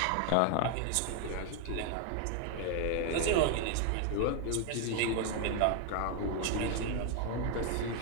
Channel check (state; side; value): different; both; correlation 0.00